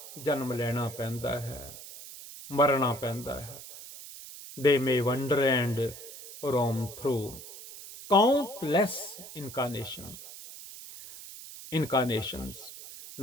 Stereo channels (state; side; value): noise; right; hiss, 14 dB below the sound